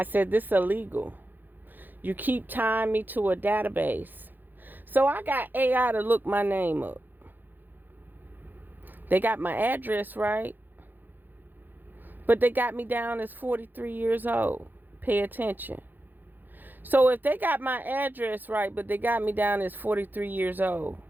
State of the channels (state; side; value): late; left; 0.088 ms